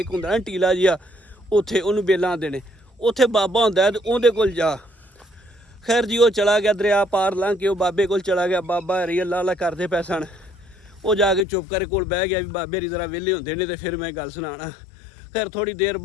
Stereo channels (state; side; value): drops out; right; at 11.5 s